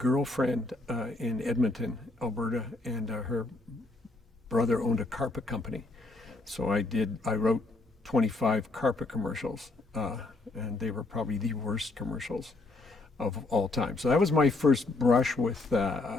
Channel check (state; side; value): quieter; right; 3.1 dB